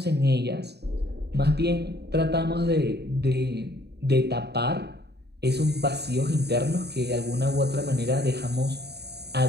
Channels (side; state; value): left; late; 0.48 ms